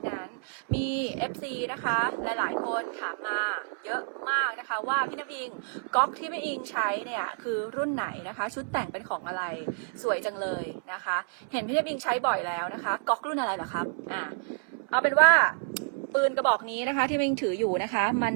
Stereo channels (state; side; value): silent; left; 58 dB below the other